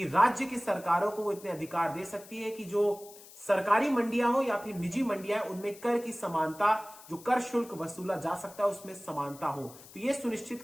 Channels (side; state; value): left; noise; hiss, 19 dB below the sound